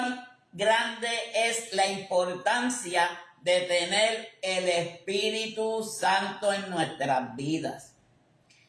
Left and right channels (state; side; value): identical; both; correlation 1.00